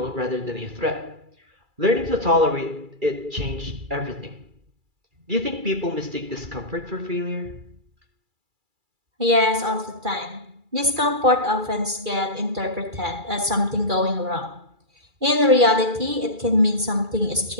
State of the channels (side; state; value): left; late; 2.3 ms